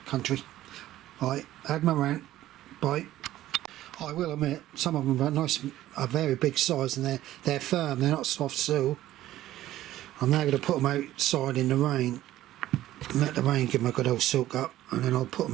country. Right, had my rant. Bye. I will admit, some of them are nice, are very big size, and they're firm, they're not soft sew. I'm now going to put them outside in the rain, and let the rain give them a good old soak up, and then I'll put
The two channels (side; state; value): left; quieter; 14.3 dB